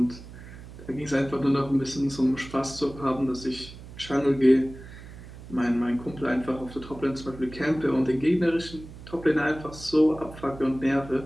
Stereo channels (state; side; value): noise; right; hum, 15 dB below the sound